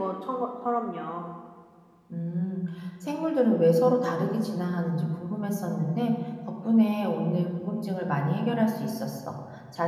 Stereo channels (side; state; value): both; identical; correlation 1.00